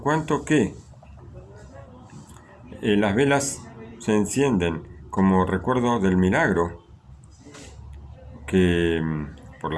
cuanto que las velas se encienden como recuerdo del milagro, que por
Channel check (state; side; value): identical; both; correlation 1.00